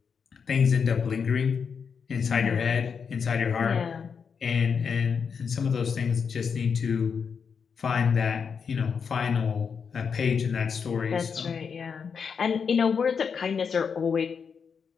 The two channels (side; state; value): right; quieter; 6.2 dB